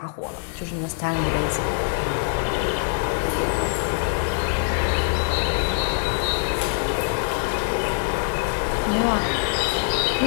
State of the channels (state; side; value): silent; right; 63 dB below the other